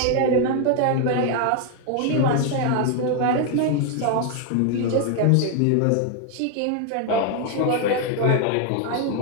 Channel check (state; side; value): different; both; correlation 0.00